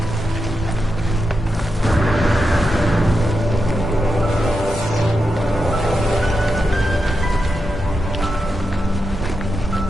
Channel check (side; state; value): both; normal; correlation 0.87